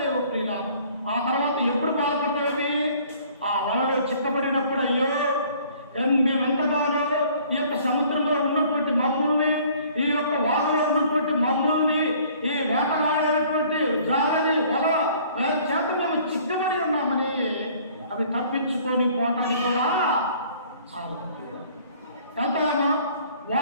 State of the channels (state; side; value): inverted; both; correlation -0.55